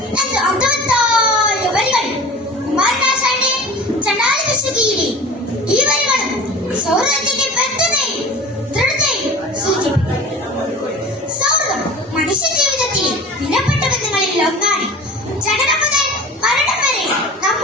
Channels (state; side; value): normal; both; correlation 0.38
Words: എന്ന് അർത്ഥവത്തായ വരികൾ കുമാരനാശാന്റെ ചണ്ടാലവിശുദ്ധിയിലെ ഈ വരികളും സൗഹൃദത്തിന്റെ ബന്ധത്തെയും ദൃഢതയും സൂചിപ്പിക്കുന്നു. സൗഹൃദം മനുഷ്യ ജീവിതത്തിലെ വിലപ്പെട്ട ബന്ധങ്ങളിൽ ഒന്നാണ്. ജനനം മുതൽ മരണം വരെ